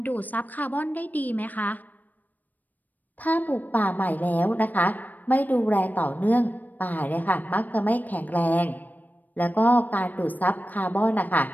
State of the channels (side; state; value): right; late; 0.084 ms